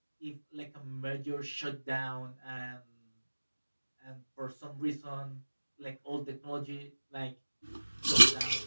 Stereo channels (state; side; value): inverted; both; correlation -1.00